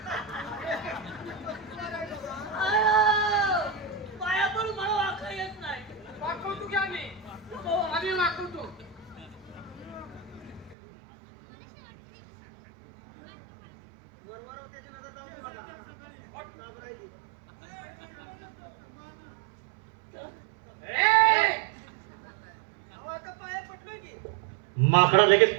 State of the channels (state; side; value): drops out; left; at 10.8 s